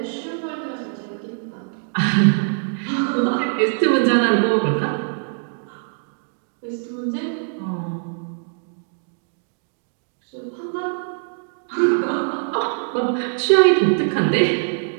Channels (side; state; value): left; silent; digital silence